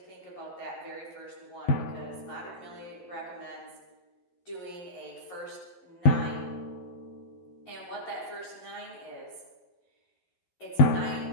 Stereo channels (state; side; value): late; right; 12 ms